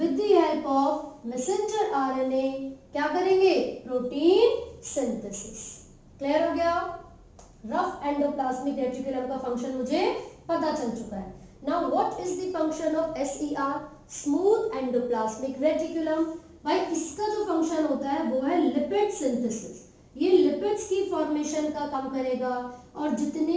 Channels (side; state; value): both; identical; correlation 1.00